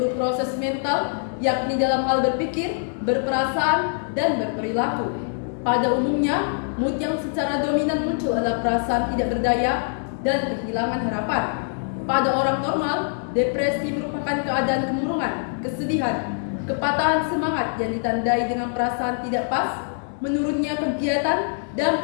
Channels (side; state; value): right; silent; digital silence